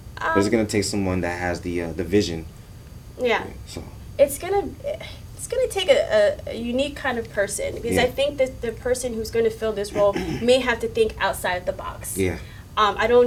But it's going to take someone that has the vision. Yeah. So It's gonna take a unique kind of person because Yeah. I think that the person who's going to fill this role may have to think outside the box. yeah, I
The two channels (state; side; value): identical; both; correlation 1.00